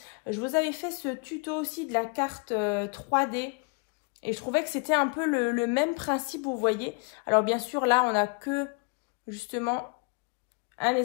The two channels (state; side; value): quieter; right; 34.2 dB